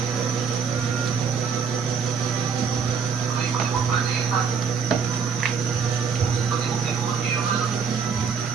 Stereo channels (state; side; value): quieter; left; 6.1 dB